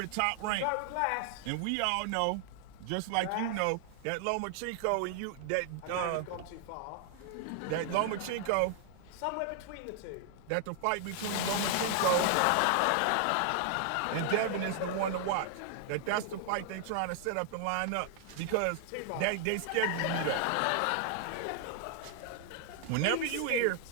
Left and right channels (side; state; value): both; different; correlation 0.00